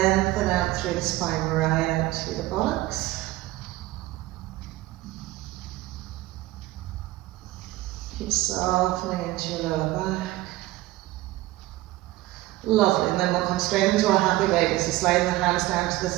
out through the spine, right out to the buttocks. Keep softening into your lower back. Lovely, and then we'll come straight into our happy baby. So sliding the hands down to the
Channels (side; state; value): left; quieter; 17.3 dB